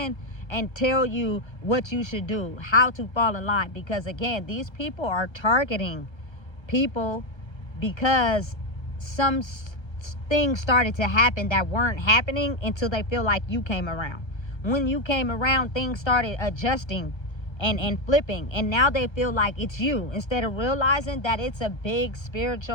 and tell you what you should do, how to fall in line, because again, these people are targeting people because some things started to happen that weren't happening until they feel like you came around. When you came around, things started adjusting and flipping, and now they feel like it's you, instead of realizing that it's a big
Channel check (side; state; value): right; late; 1.3 ms